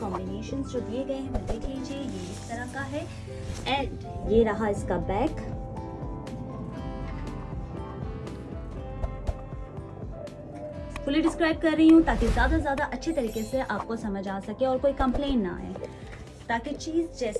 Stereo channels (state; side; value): identical; both; correlation 1.00